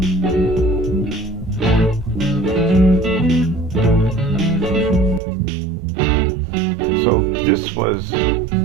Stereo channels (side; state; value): left; drops out; at 5.2 s